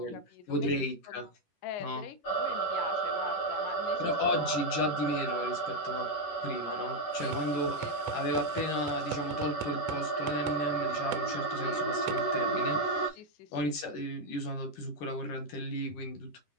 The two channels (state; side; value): late; right; 11 ms